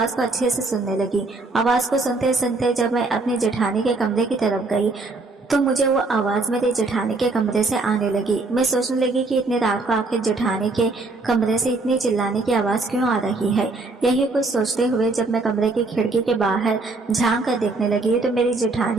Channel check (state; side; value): quieter; left; 3.5 dB